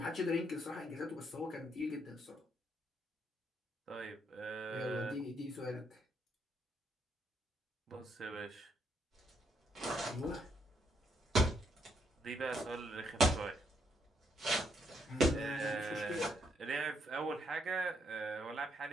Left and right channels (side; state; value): both; normal; correlation 0.74